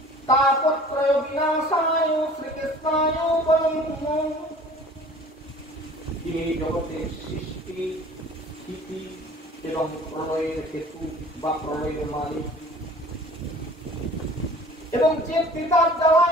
তাপত্রয় বিনাশায় শ্রীকৃষ্ণায় বলং। তিনি জগতের সৃষ্টি, স্থিতি এবং প্রলয়ের হেতু বা প্রলয়ের মালিক, এবং যে কৃতার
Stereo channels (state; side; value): normal; both; correlation 0.47